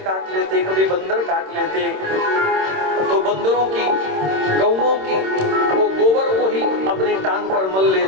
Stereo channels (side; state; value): left; late; 26 ms